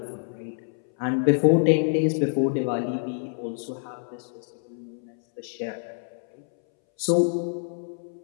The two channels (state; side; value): silent; right; 60 dB below the other